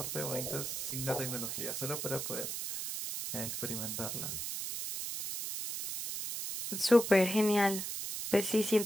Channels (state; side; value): noise; right; hiss, 4 dB below the sound